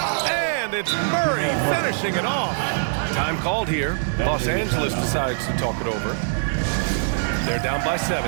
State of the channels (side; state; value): left; silent; digital silence